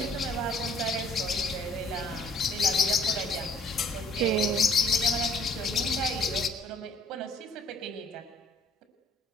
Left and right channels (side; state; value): both; normal; correlation 0.56